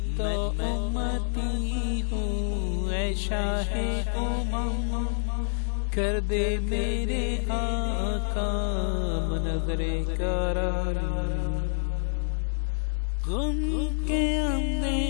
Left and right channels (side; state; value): right; silent; digital silence